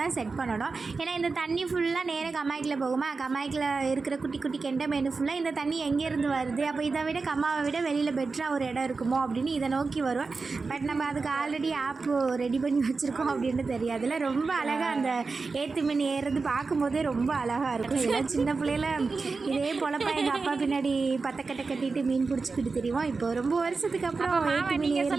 செட் பண்ணணும். ஏன்னா இந்த தண்ணி ஃபுல்லாக நேராக கம்மாய்க்கில் போகுமா, கம்மாய்க்கில் இருக்கிற குட்டி குட்டி கெண்டை மீன் ஃபுல்லாக இந்த தண்ணி எங்கேருந்து வருது, அப்போ இதை விட கம்மாவை விட வெளியில் பெட்டராக ஒரு இடம் இருக்குமோ அப்படின்னு இதை நோக்கி வருவோம். பட் நம்ம அதுக்கு ஆல்ரெடி ஆப்பு ரெடி பண்ணி வச்சுருக்கோம் அப்படின்னு தெரியாதுல்ல. ரொம்ப அழகாக அந்த ஏற்று மீன் ஏறுறது பார்க்கும்போதே ரொம்ப அழகாக இருக்கும். இதெல்லாம் சின்ன பிள்ளையில இதே பொழப்பா எங்கள் அப்பா பின்னாடி பத்தக்கட்டை கட்டிட்டு மீன் பிடிச்சிக்கிட்டு தெரியும். இப்போ ரொம்ப வருஷத்துக்கு அப்புறம் ஏற்று மீன்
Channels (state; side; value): quieter; left; 4.2 dB